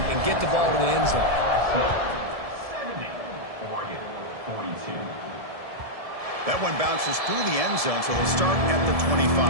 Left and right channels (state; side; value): late; left; 1.7 ms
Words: get the ball to the end zone. 70, Oregon 42. That one bounces through the end zone, so they'll start at the 25.